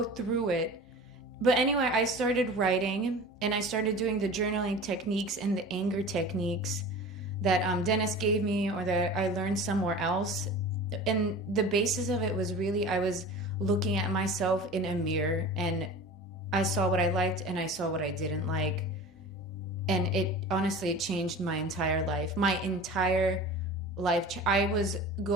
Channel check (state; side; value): normal; both; correlation 0.37